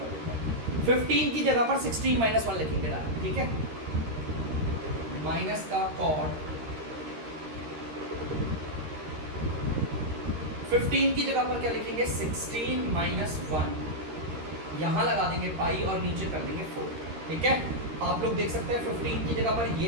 देते हैं। 15 की जगह पर 16 -1 लिखेंगे डायरेक्ट, ठीक है। माइनस का कॉट 15 की जगह पर क्या लिखेंगे, 16 -1, यहाँ लगा देंगे पाई और नीचे कर देंगे 4, ठीक है। आप लोग देख सकते हैं 15 की जगह पर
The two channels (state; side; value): late; left; 13 ms